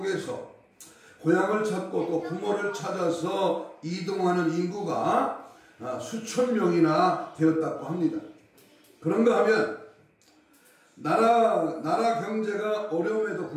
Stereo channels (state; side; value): identical; both; correlation 1.00